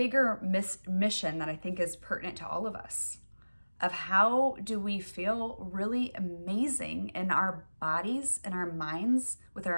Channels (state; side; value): inverted; both; correlation -1.00